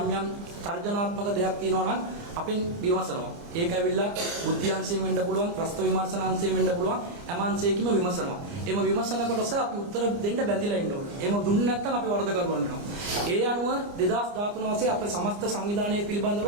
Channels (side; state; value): left; late; 29 ms